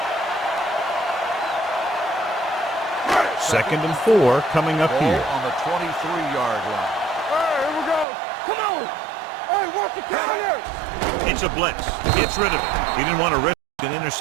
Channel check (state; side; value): drops out; left; at 8.1 s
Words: Second and 4 coming up Ball here. on the 23-yard line. Hey, here we go. Come on. Hey, watch the carrier. It's a blitz. Gets rid of it. He didn't want to risk an